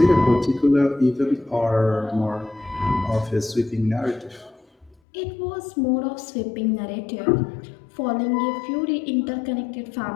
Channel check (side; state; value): right; drops out; at 5.0 s